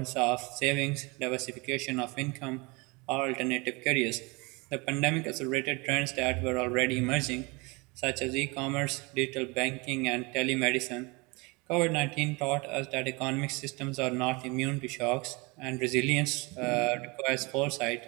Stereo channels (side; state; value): left; quieter; 27.3 dB